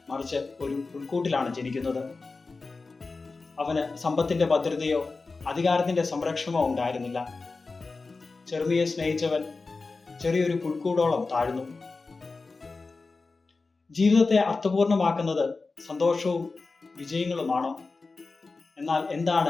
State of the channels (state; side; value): quieter; right; 3.9 dB